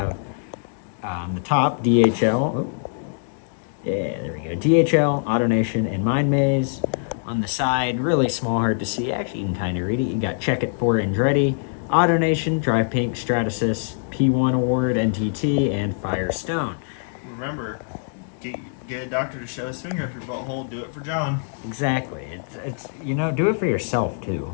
the top DHL. Oh. Yeah, there we go. DHL, AutoNation, and Mind Maze. On the side, really small, hard to see. Actually, you can kind of read it. You got Check It for Andretti, AutoNation, Drive Pink, Stratasys, P1 Award, NTT, and Firestone. Remember, get a doctor to show his finger up your butthole. Do it for John. Exactly. It's do it for yourself too.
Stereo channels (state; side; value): silent; right; digital silence